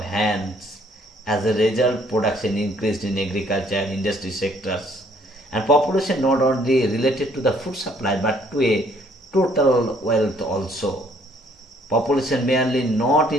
hands. As a result, production increased in agriculture and industry sectors, and population not only related to the food supply but to a total wealth also. Population merely not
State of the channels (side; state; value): both; normal; correlation 0.63